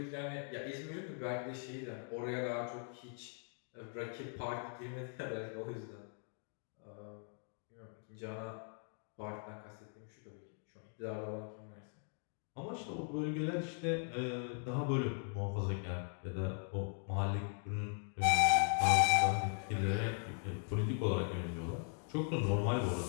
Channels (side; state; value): right; silent; 51 dB below the other